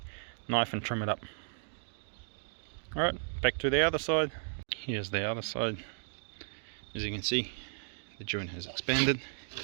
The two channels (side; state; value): left; silent; digital silence